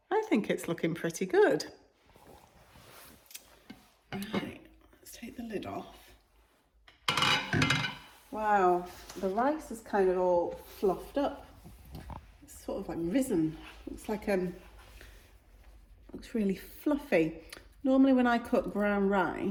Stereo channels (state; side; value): identical; both; correlation 1.00